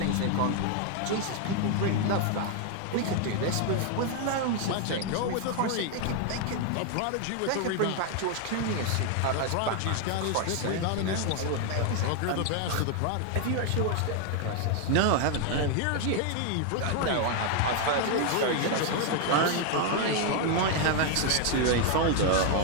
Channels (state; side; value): different; both; correlation 0.00